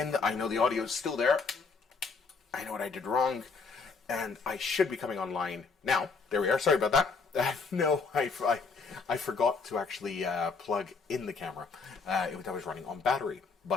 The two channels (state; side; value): quieter; right; 4.7 dB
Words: I know the audio is still there. I know what I did wrong. And I should be coming online now. There we are. Sorry about that. No, I forgot to actually plug in the camera. I was running on battery.